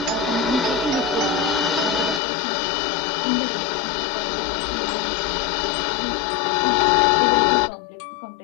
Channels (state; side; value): drops out; right; at 2.2 s